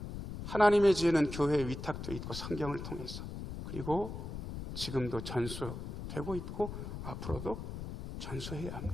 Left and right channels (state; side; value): noise; left; rumble, 7 dB below the sound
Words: 하나님의 지혜는 교회에 위탁되어 있고 성경을 통해서 그리고 지금도 전수되고 있고 앞으로도 전수해야